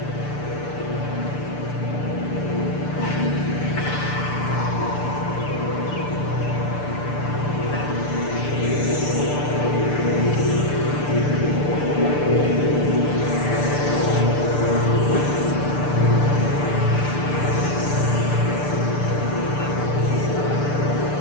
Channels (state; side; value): late; right; 6.8 ms